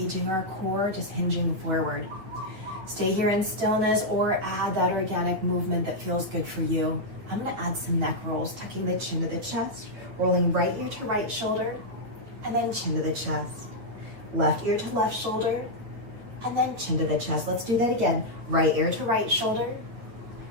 our core, just hinging forward. Stay here in stillness or add that organic movement that feels good for you. I'm gonna add some neck rolls, tucking the chin to the chest, rolling right ear to right shoulder, and then chin to the chest. Left ear to left shoulder, and then chin to the chest. Let's do that again. Right ear to right shoulder,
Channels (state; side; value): late; left; 9.1 ms